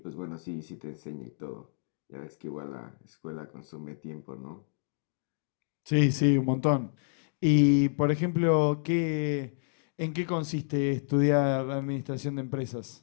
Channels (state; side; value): silent; right; digital silence